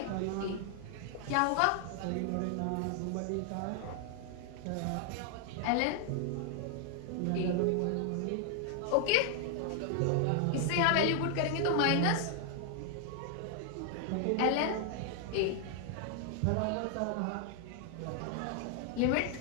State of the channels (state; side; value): different; both; correlation 0.00